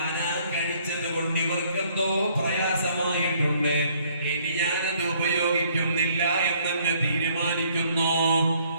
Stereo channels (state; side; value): inverted; both; correlation -0.63